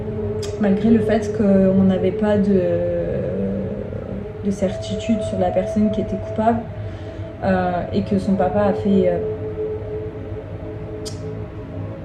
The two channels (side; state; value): both; identical; correlation 1.00